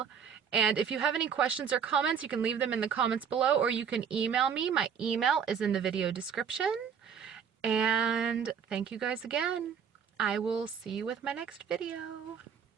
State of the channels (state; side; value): quieter; left; 7.3 dB